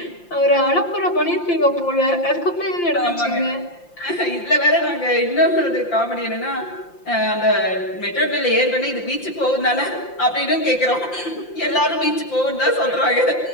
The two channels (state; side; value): late; right; 5.8 ms